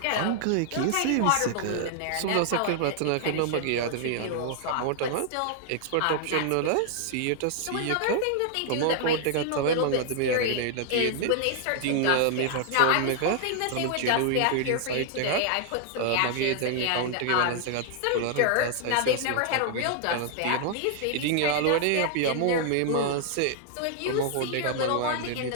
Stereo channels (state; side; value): different; both; correlation 0.00